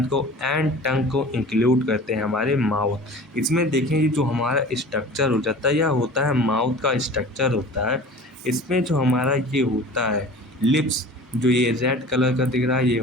को, एंड टंग को इंक्लूड करते हैं हमारे माउथ। इसमें देखें ये जो हमारा स्ट्रक्चर हो जाता है यह होता है माउथ का स्ट्रक्चर होता है। इसमें जो हमारा ये होता है लिप्स, जो ये रेड कलर का दिख रहा है ये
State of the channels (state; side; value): normal; both; correlation 0.40